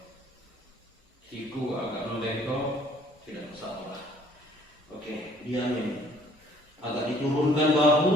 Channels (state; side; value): normal; both; correlation 0.59